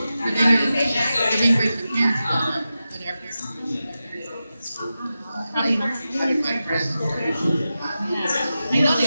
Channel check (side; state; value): both; inverted; correlation -0.92